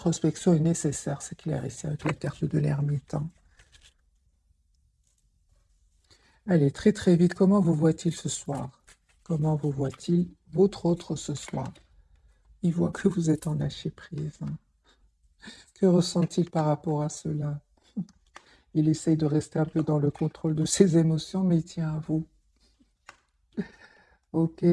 est nécessaire, c'est clair, ici, avec la carte de l'ermite. Hein. Allez, très très vite, comment vous voit-il ce soir? Comment vous voit-il votre autre ce soir? Il voit que vous êtes en lâcher prise. Hein. Que ressent-il par rapport à cela? Il essaye de rester un peu dans le contrôle de ses émotions, mais il tient à vous. Ok,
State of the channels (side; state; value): both; identical; correlation 1.00